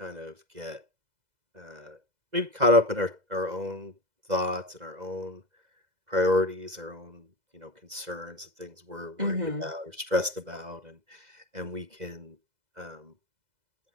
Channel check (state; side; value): late; left; 2.0 ms